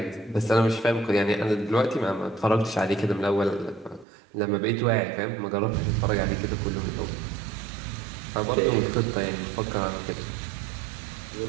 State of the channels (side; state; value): left; drops out; at 4.0 s